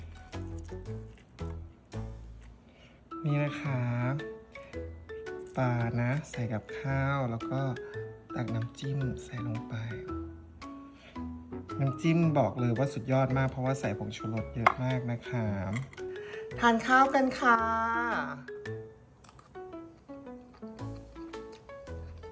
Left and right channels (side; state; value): both; identical; correlation 1.00